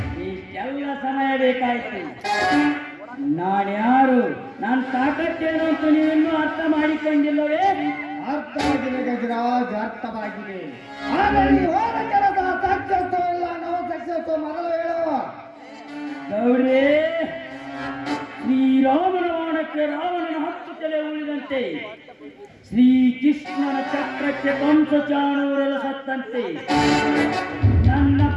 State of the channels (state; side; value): identical; both; correlation 1.00